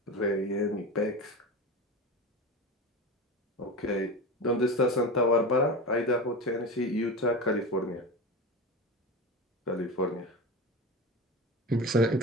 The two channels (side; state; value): both; normal; correlation 0.25